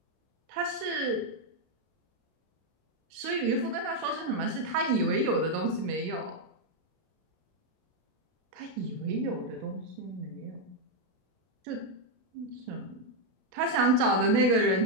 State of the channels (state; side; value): late; left; 32 ms